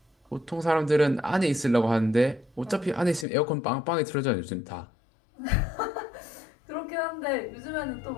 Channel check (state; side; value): drops out; right; at 3.2 s